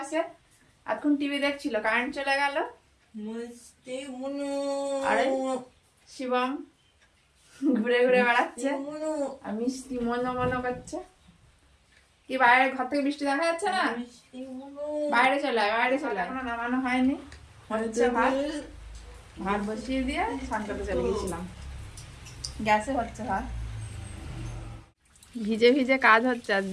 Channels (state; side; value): identical; both; correlation 1.00